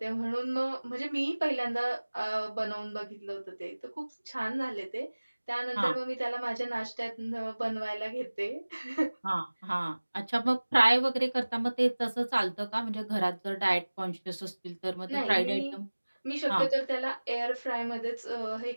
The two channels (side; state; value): both; inverted; correlation -1.00